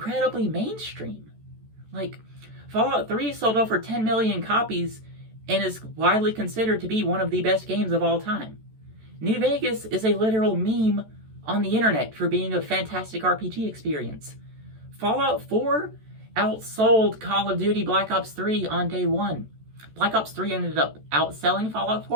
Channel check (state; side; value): late; left; 14 ms